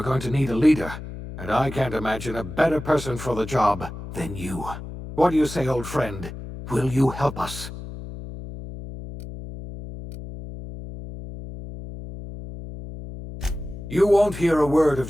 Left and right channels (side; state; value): left; noise; hum, 11 dB below the sound